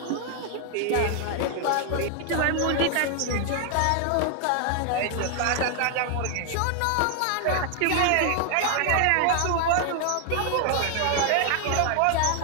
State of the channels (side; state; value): both; different; correlation 0.00